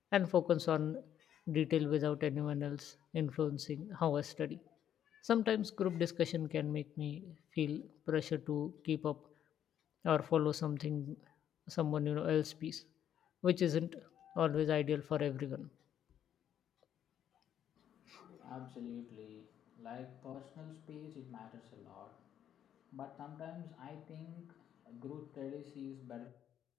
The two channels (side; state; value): right; quieter; 9.9 dB